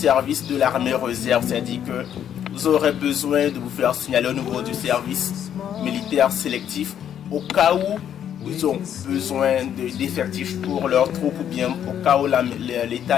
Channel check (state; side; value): quieter; right; 9.6 dB